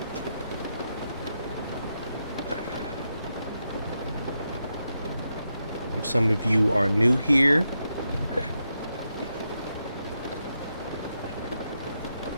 If some of you are new here,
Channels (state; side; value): inverted; both; correlation -0.85